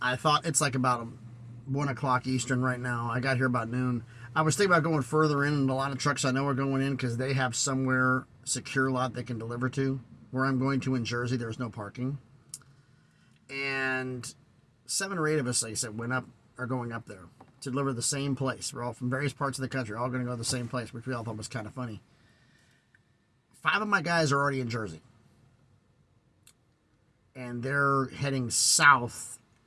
thought it's like about 1 o'clock Eastern right now. I got here about noon. I was thinking about going further in, and a lot of trucks I know are going in because they have somewhere secure lot they can deliver to. Where I'm going to in Jersey, there's no parking. And 7 or 8 of us, like I said, are going up there to deliver the same place. We're all from various parts of the country, all going to go to the same place, which we all thought was kind of funny. 5 of my guys are already in Jersey. And they're heading south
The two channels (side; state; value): both; identical; correlation 1.00